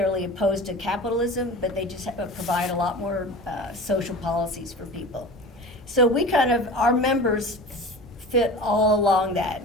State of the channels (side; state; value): both; normal; correlation 0.35